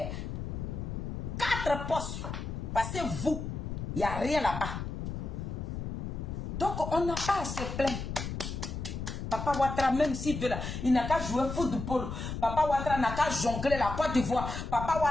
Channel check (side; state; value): left; noise; rumble, 5 dB below the sound